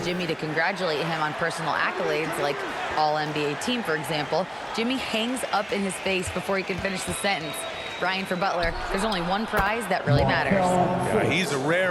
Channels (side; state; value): both; identical; correlation 1.00